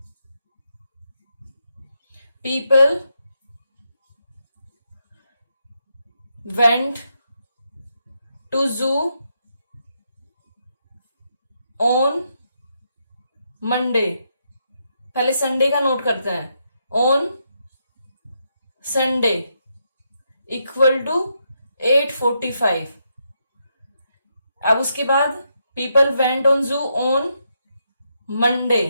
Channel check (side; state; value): both; inverted; correlation -0.81